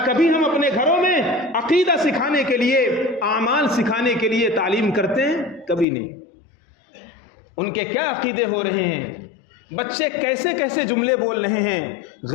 کبھی ہم اپنے گھروں میں عقیدہ سکھانے کے لیے، اعمال سکھانے کے لیے تعلیم کرتے ہیں؟ کبھی نہیں. ان کے کیا عقیدے ہو رہے ہیں، بچے کیسے کیسے جملے بول رہے ہیں.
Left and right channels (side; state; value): right; drops out; at 5.9 s